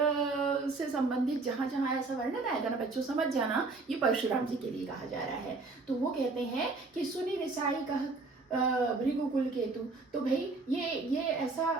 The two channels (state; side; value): quieter; left; 3.7 dB